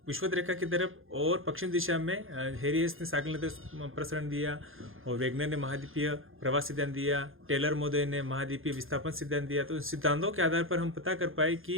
विषुवत रेखा की तरफ और पश्चिम दिशा में हेरियस ने सागल नदी प्रसरण दिया और वेगनर ने महाद्वीपीय प्रवास सिद्धांत दिया, टेलर मोदय ने महाद्वीपीय विस्थापन सिद्धांत दिया। तो सिद्धांतों के आधार पर हम पता कर पाए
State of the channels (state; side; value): late; left; 0.60 ms